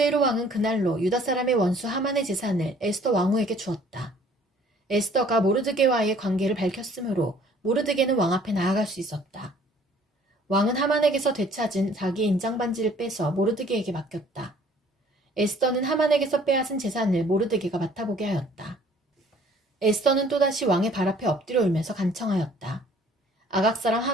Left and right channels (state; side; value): normal; both; correlation 0.56